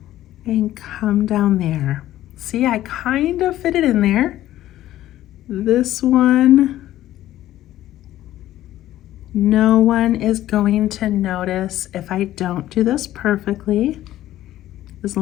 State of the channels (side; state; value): right; quieter; 13.8 dB